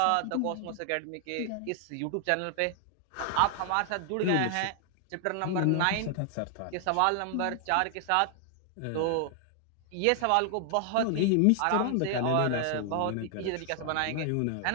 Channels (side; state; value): both; different; correlation 0.00